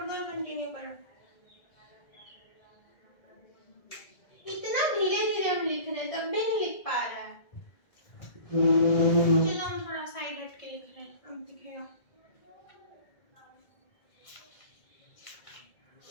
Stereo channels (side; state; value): right; late; 1.7 ms